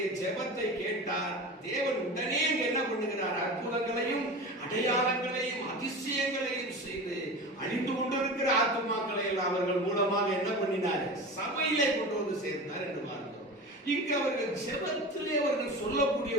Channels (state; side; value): normal; both; correlation 0.31